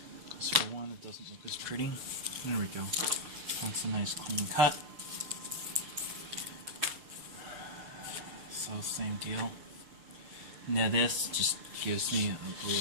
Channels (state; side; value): late; left; 6.7 ms